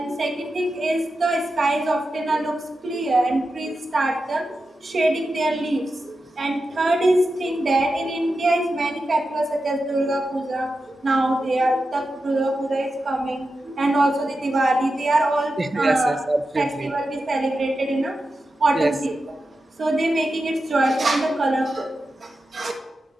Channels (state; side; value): normal; both; correlation 0.90